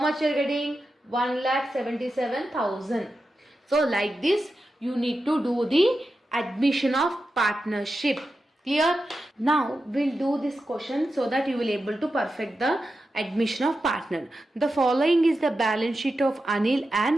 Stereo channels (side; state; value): both; normal; correlation 0.90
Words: you are getting? 1,77,000. So like this you need to do the admission of partnership. Clear? Now we'll do this question so that you will able to perfect the admission of partner. The following is the balance sheet of Anil